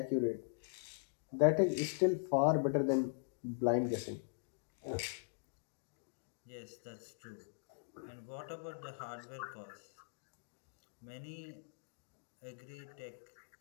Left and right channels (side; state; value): right; silent; digital silence